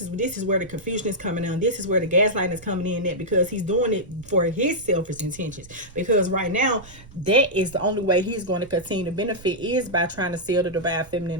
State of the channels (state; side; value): noise; right; rumble, 21 dB below the sound